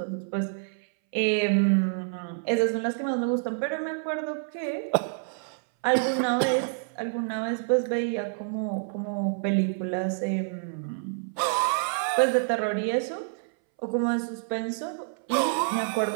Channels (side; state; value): left; silent; 60 dB below the other